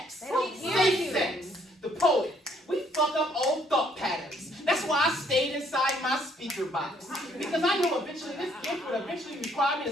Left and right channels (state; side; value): normal; both; correlation 0.66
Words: Safe sex. The poet. We fuck up old thought patterns. That's why I stayed inside my speaker box. Because I knew eventually this gift would eventually require me